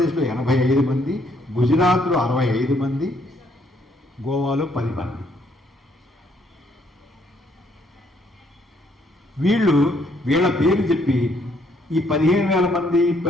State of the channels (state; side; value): normal; both; correlation 0.70